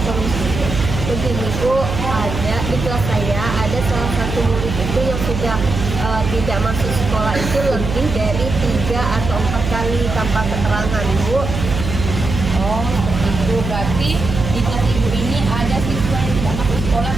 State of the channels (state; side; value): noise; right; hum, 4 dB below the sound